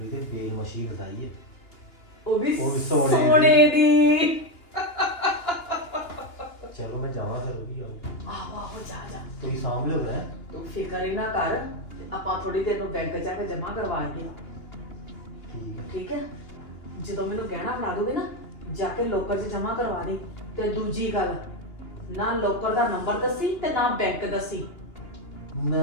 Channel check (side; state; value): right; late; 2.9 ms